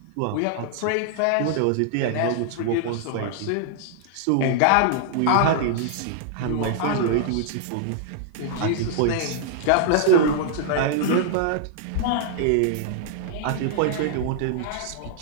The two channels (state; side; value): different; both; correlation -0.01